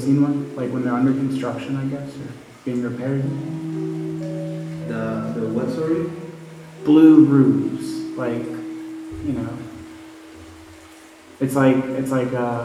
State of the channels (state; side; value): identical; both; correlation 1.00